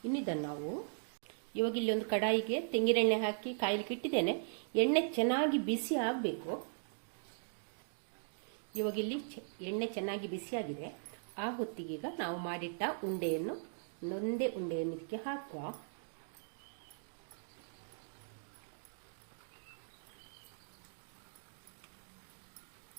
ಇನ್ನಿದನ್ನು ನಾವು ಇವಾಗ ಇಲ್ಲಿ ಒಂದು ಕಡಾಯಿಗೆ ತೆಂಗಿನೆಣ್ಣೆ ಹಾಕಿ ಕಾಯಲಿಕ್ಕೆ ಇಟ್ಟಿದ್ದೇನೆ. ಎಣ್ಣೆ ಚೆನ್ನಾಗಿ ಬಿಸಿ ಆಗಬೇಕು. ಇವಾಗ ಇಲ್ಲಿ ಎಣ್ಣೆ ಚೆನ್ನಾಗಿ ಬಿಸಿಯಾಗಿದೆ. ಆ ಹೊತ್ತಿಗೀಗ ನಾವು ಮಾಡಿಟ್ಟ ಉಂಡೆಯನ್ನು ಒಂದೇ ಉಂಡೆಯನ್ನು ಇದಕ್ಕೆ ಹಾಕುವ.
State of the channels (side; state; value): left; silent; digital silence